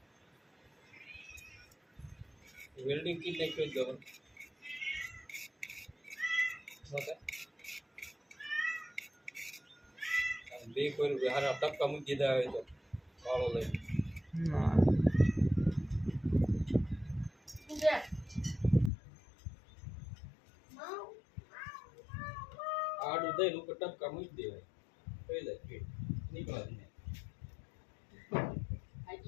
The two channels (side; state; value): right; drops out; at 18.9 s